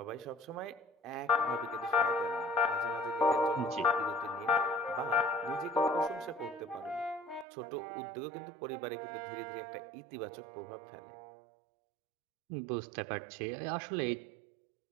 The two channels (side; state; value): left; drops out; at 7.5 s